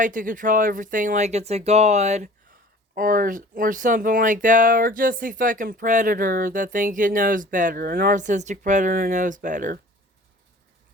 to control everything like it's a god or something like that, or just a fucking predator that thinks it knows better. A narcissistic predator knows better.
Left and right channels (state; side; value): normal; both; correlation 0.46